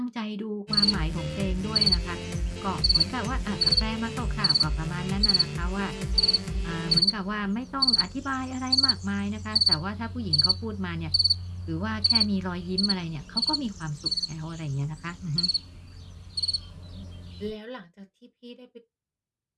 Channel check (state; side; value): identical; both; correlation 1.00